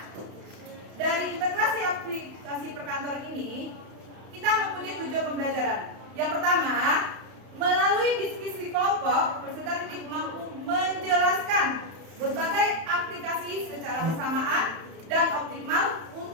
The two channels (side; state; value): left; late; 31 ms